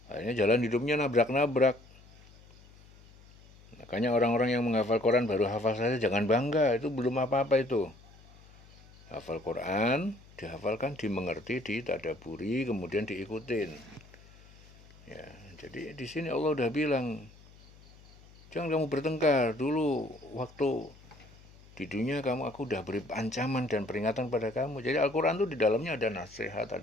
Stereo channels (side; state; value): left; noise; hum, 23 dB below the sound